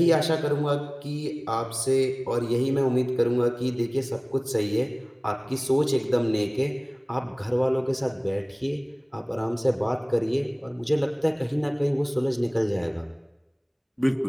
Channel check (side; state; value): both; identical; correlation 1.00